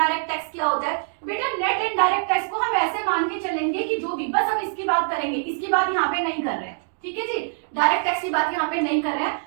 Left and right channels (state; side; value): silent; left; digital silence